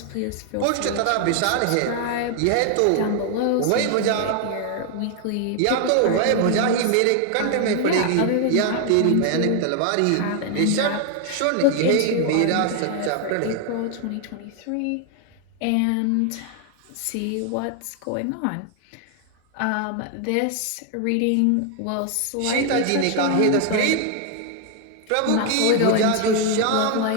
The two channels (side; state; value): both; different; correlation 0.00